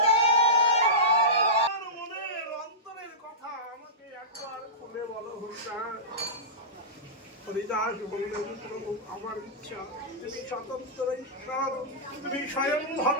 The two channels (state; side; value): normal; both; correlation -0.18